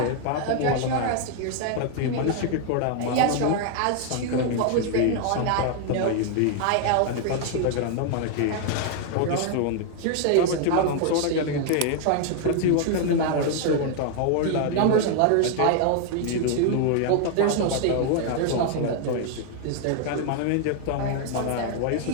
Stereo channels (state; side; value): different; both; correlation 0.00